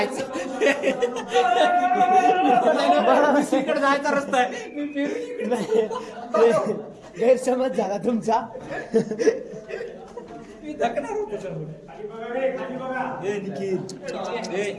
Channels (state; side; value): identical; both; correlation 1.00